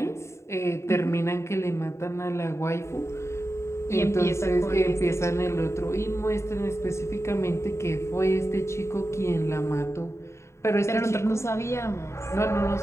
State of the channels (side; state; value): right; late; 0.13 ms